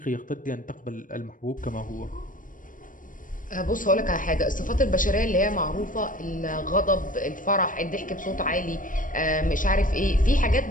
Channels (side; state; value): right; late; 0.39 ms